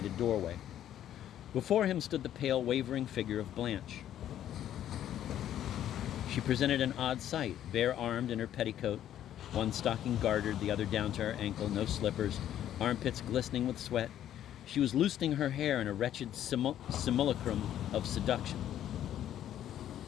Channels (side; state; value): right; quieter; 11.3 dB